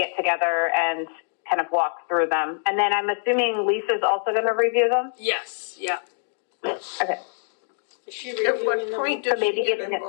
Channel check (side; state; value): right; silent; digital silence